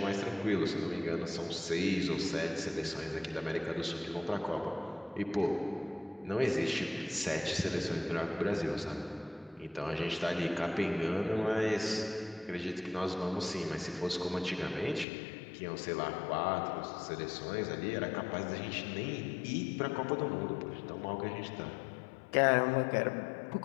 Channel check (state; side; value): drops out; right; at 15.1 s